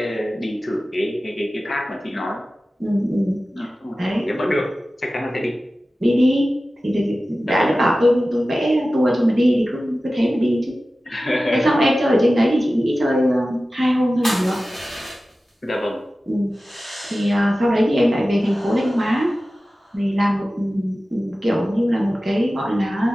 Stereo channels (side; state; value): both; normal; correlation 0.96